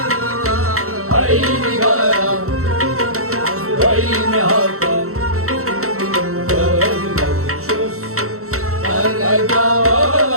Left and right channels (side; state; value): left; late; 0.64 ms